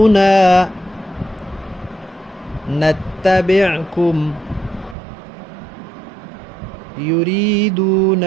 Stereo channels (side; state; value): left; drops out; at 5.0 s